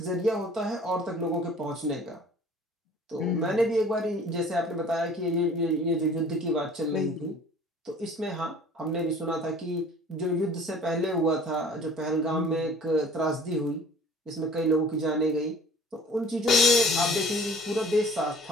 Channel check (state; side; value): normal; both; correlation 0.49